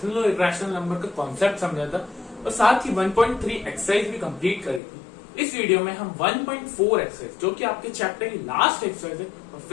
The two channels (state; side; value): drops out; right; at 4.8 s